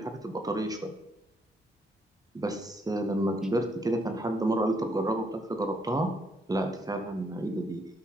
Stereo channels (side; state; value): both; normal; correlation 0.72